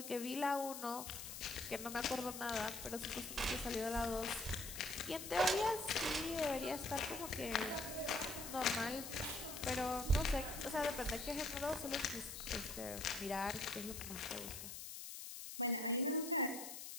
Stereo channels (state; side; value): noise; left; hiss, 8 dB below the sound